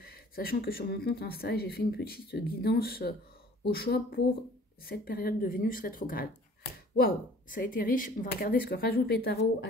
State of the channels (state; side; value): normal; both; correlation 0.51